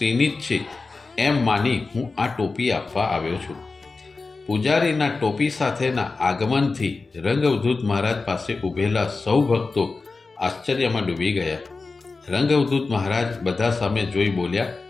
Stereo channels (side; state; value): right; quieter; 4.0 dB